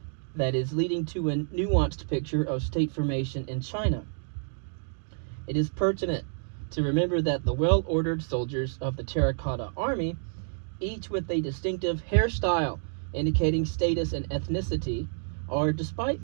that is leading to a nuanced picture of state formation in China. It is pertinent to remember that the well-ordered soldiers of the terracotta army, each with a distinctive hairstyle indicating status and ethnicity, are,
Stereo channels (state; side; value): silent; left; digital silence